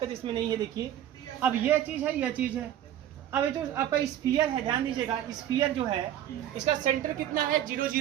इसमें नहीं है। देखिए अब यह चीज है, यह चीज है, अब ये जो आपका स्फीयर है, ध्यान दीजिएगा, स्फीयर जो है इसका सेंटर कितना है, 0,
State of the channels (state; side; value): quieter; left; 11.5 dB